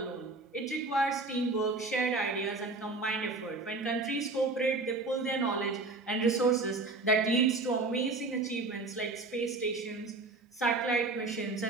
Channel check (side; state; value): left; quieter; 3.3 dB